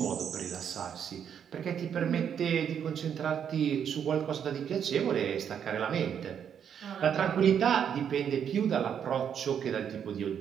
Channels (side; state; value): left; quieter; 8.3 dB